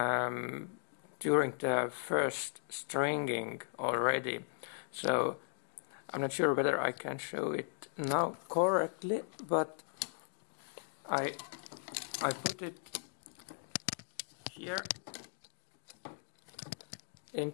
during the first stringing already. So I'm not sure whether I can show it now correctly, but I put it here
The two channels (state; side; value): silent; right; digital silence